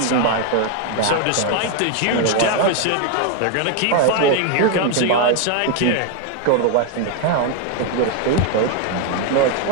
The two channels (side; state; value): both; different; correlation 0.01